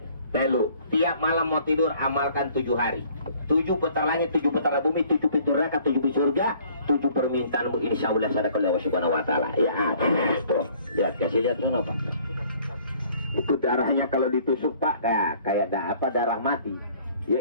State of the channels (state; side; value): inverted; both; correlation -0.57